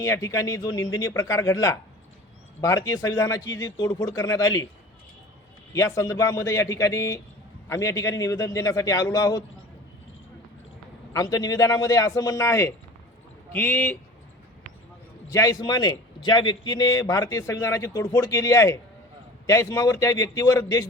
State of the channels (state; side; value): normal; both; correlation 0.40